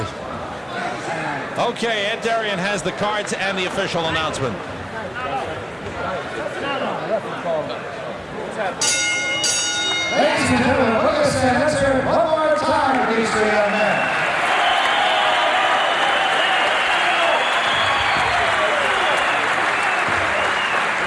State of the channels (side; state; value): both; identical; correlation 1.00